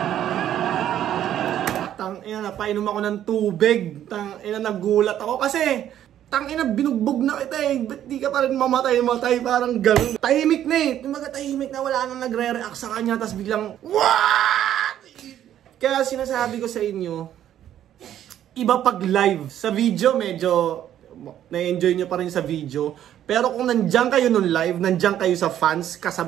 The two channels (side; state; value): left; quieter; 11.1 dB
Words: Tangina, napainom ako ng tubig. Tangina, nagulat ako kasi tangina, binugbog na kita eh. Ba't di ka pa rin mamatay? Parang gano'n. Tahimik na eh. Tumaga tahimik na, wala nang nagre-react sa kanya. Tapos biglang, what? Kaya sinasabi ko sa inyo, iba pag live. Sa video, medyo na-enjoy nyo pa rin sa video. Pero kung nandiyan kayo nung live, nandiyan kayo sa fans,